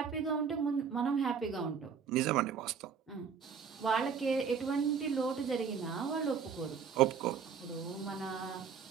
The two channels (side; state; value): left; quieter; 6.5 dB